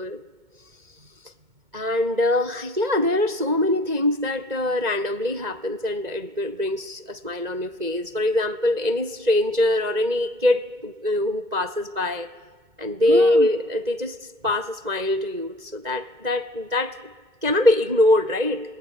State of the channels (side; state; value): left; late; 2.2 ms